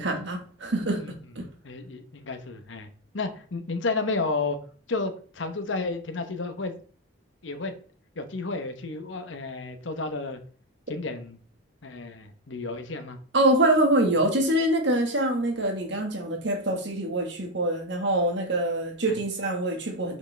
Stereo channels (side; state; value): both; normal; correlation 0.02